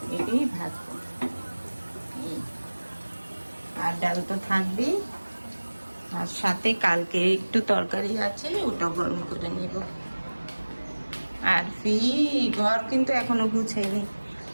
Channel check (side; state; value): both; inverted; correlation -1.00